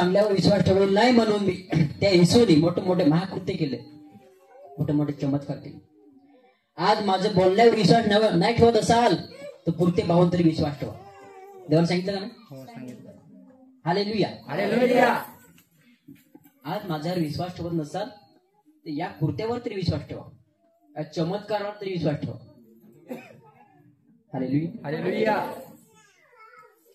विश्वास ठेवलेला नाही, म्हणून मी त्या येशूने मोठे महाकृत्य केले, मोठे चमत्कार केले. आज माझं बोलण्यावर विश्वास नाही ठेवत असाल तर पुरते पाहून तरी विश्वास ठेवा. देवाने सांगितलं का नाही? हालेलुया. आज माझ्यावर विश्वास ठेवत नसाल तर या कृत्यावर तरी विश्वास ठेवा, या चमत्कारावर तरी विश्वास ठेवा. हालेलुया.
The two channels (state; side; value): identical; both; correlation 1.00